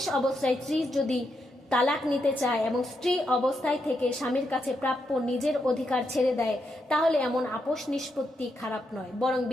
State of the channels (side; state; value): both; normal; correlation 0.82